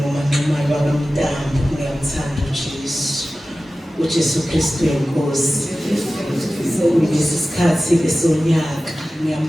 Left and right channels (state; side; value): normal; both; correlation 0.95